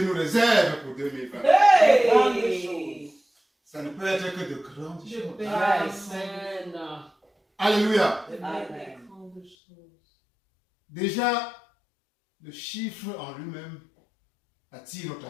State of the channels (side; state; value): right; drops out; at 9.6 s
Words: nous réserve pour 2020? Hey. Ça ne peut être que de grandes choses. Amen. Alléluia. Amen. Grandes choses. Déjà, le chiffre en lui-même attire notre